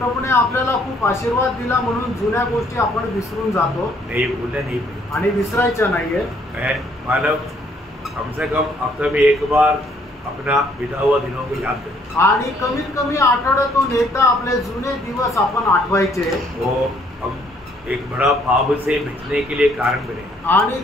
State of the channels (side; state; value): both; normal; correlation 0.65